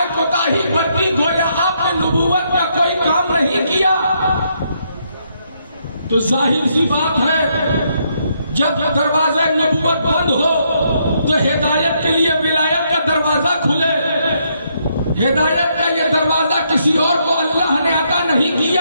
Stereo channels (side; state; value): both; inverted; correlation -0.75